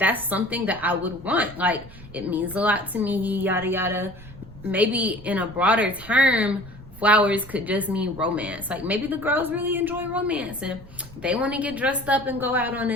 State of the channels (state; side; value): noise; right; rumble, 19 dB below the sound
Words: something that I would want. Like, it means a lot to me, yada, yada. Maybe in a broader term, flowers could just mean romance. Like, maybe the girls really enjoy romance and they want to get dressed up and go out on